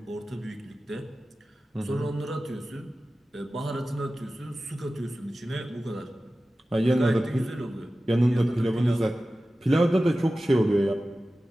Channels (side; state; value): both; normal; correlation 0.95